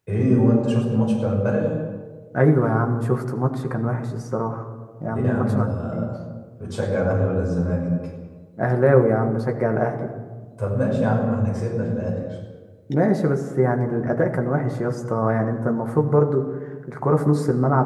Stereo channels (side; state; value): both; identical; correlation 1.00